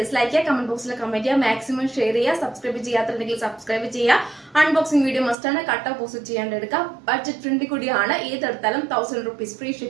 ചെയ്യുക, കമന്റ് ബോക്സിൽ കമന്റ് ചെയ്യുക, മാക്സിമം ഷെയർ ചെയ്യുക. സബ്സ്ക്രൈബ് ചെയ്യാത്തുണ്ടെങ്കിൽ സബ്സ്ക്രൈബ് ചെയ്യുക. അൺബോക്സിംഗ് വീഡിയോ മസ്റ്റ് ആണ്. കട്ട് ഓപ്പോസിറ്റ് ചെയ്യാണ്ട് എടുക്കുക. ബഡ്ജറ്റ് ഫ്രണ്ട്ലി കൂടിയാണ്. ഏതെടുത്താലും 1000 rupees ഫ്രീ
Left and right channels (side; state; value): left; drops out; at 5.4 s